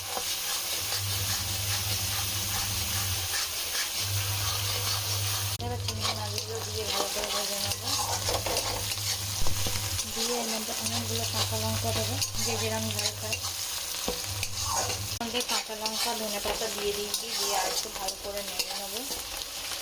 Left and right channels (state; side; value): identical; both; correlation 1.00